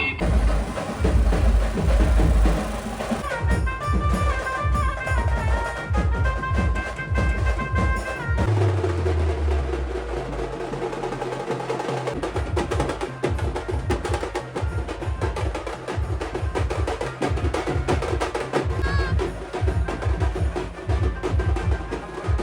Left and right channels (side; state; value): both; identical; correlation 1.00